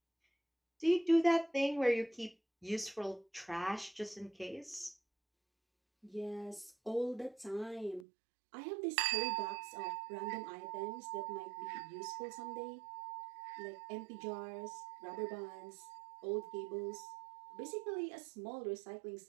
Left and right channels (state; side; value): drops out; left; at 8.1 s